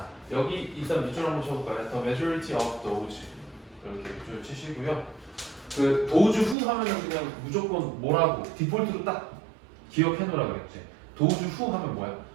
여기 일단 밑줄 한번 쳐볼까요? The majority of those 이렇게 밑줄 치시고요. 그 도주 후 하면은 그냥 무조건 뭐라고 디폴트로 딱 기억해 놓으라 그랬지. 도주 후 하면 뭐야?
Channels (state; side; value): drops out; left; at 6.6 s